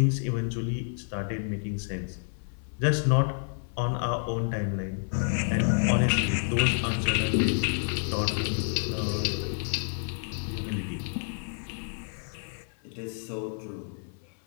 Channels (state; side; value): silent; right; 58 dB below the other